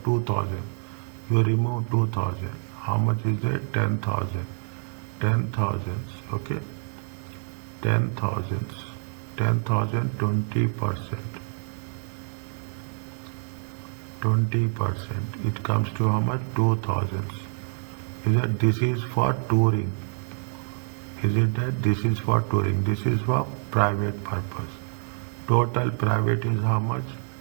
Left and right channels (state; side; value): silent; left; digital silence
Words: 2,000. You remove 2,000. How much is it? 10,000. 10,000. Okay. 10,000. 10,000, 20%. 20%. It comes to how much? 2,000. Is that this is for touring? Is it that this is for touring? This is for private purpose. Total private is how much?